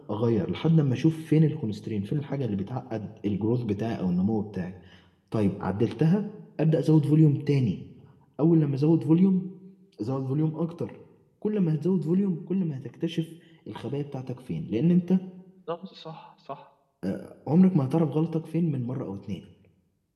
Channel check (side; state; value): both; identical; correlation 1.00